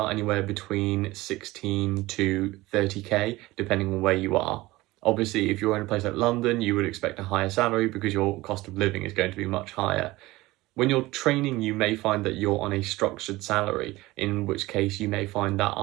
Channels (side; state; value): left; quieter; 19.2 dB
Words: anywhere between 16 to 30k, depending on where you are. Obviously, if you're in a place like London, you would expect a higher salary because your cost of living is going to be much higher. When you're training, you may find that you're on a structured salary, in which case you may find that